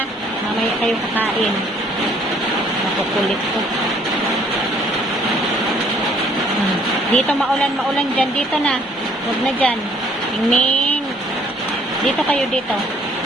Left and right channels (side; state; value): both; normal; correlation 0.62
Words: Mamaya kayo kakain. Nakukulit ko. Dito maulan dyan. Dito na. Huwag na dyan. Mingming. Dito kayo dito.